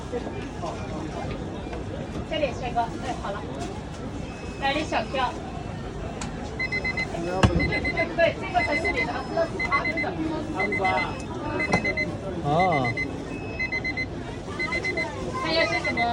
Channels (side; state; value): both; identical; correlation 1.00